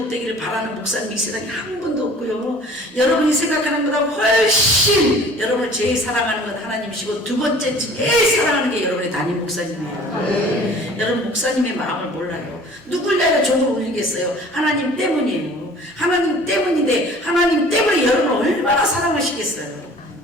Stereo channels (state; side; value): normal; both; correlation 0.48